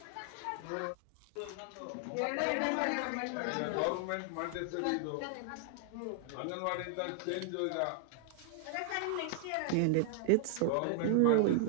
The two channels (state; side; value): different; both; correlation 0.00